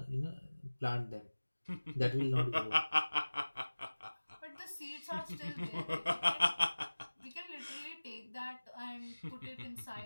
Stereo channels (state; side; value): inverted; both; correlation -1.00